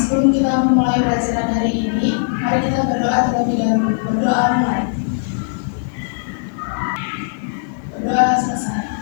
kita memulai pelajaran hari ini, mari kita berdoa terlebih dahulu. Berdoa mulai. Berdoa selesai.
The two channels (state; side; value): silent; right; digital silence